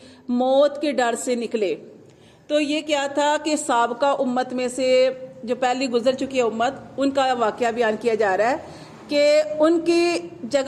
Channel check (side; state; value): both; identical; correlation 1.00